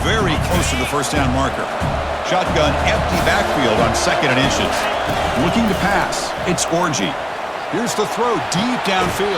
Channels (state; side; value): identical; both; correlation 1.00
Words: very close to the first down marker. Shotgun empty backfield on second and inches. Looking to pass. It's Orji. Here's the throw deep